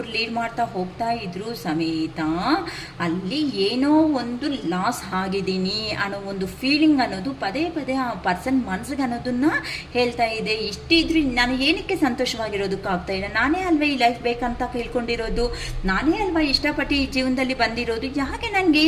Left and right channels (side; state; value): both; identical; correlation 1.00